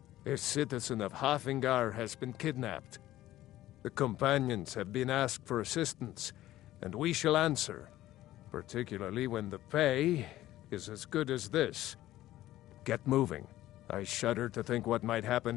A citizen of Hafingar has been kidnapped. The companions have been asked for assistance, and we shall answer, particularly when the pay is as good as this. Get moving. I shudder to think what might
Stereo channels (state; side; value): quieter; right; 14.8 dB